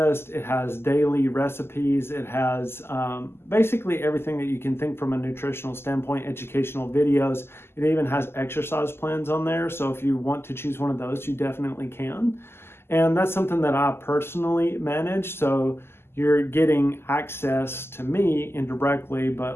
it has daily recipes, it has basically everything that you can think from a nutritional standpoint, educational videos. It even has exercise plans on there. So if you want to choose one of those, you definitely can. And that's something that I personally manage. So you're getting access to me indirectly,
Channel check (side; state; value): right; late; 0.12 ms